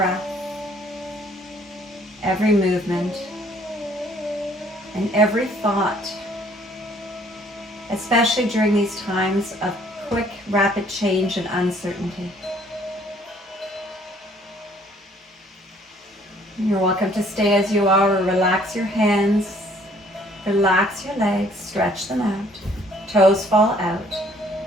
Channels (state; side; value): normal; both; correlation 0.60